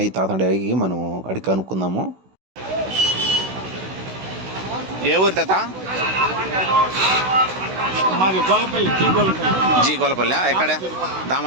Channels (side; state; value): left; late; 16 ms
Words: తాత అడిగి మనం అడిగి కనుక్కుందాము. ఏ ఊరు తాత? జీ గొల్లపల్లి. ఎక్కడ?